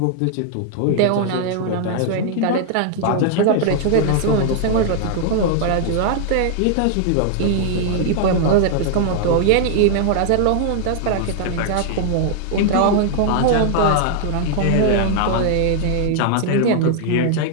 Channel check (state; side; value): different; both; correlation 0.00